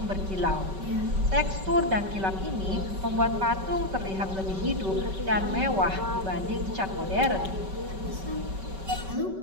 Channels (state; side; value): late; left; 5.2 ms